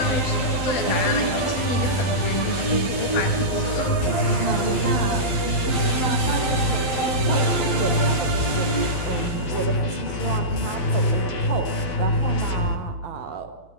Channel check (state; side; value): late; right; 12 ms